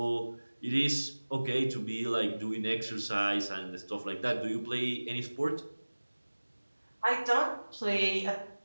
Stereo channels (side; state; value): both; inverted; correlation -1.00